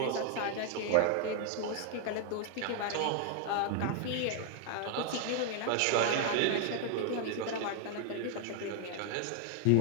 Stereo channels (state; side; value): different; both; correlation 0.00